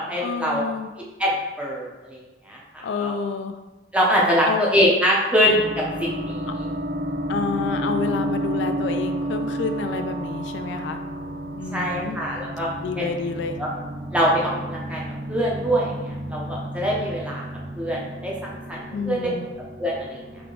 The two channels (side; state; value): both; normal; correlation 0.40